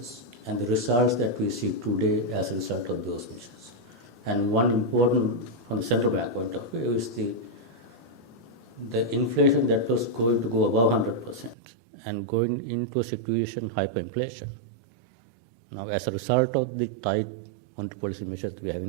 and the results that we see today as a result of those measures. And one important, from the central bank point of view, is the inflation that was going to go above 100% and going into a situation of hyperinflation. Now, as a result of the tight monetary policy measures we have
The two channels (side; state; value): left; drops out; at 11.6 s